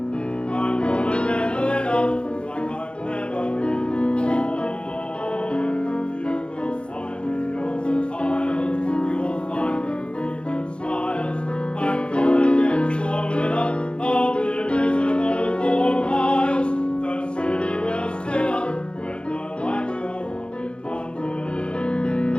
I'm gonna get lit up like I've never been before. You will find me on the tiles, you'll find me breathing smiles. I'm gonna get so lit up, I'll be visible for miles. The city will sit up when the lights go up in London.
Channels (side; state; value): right; late; 0.056 ms